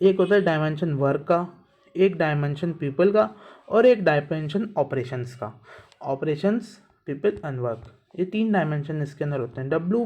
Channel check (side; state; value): both; identical; correlation 1.00